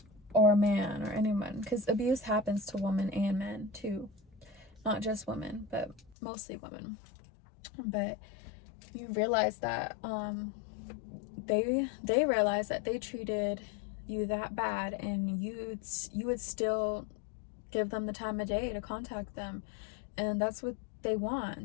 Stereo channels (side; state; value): right; drops out; at 6.2 s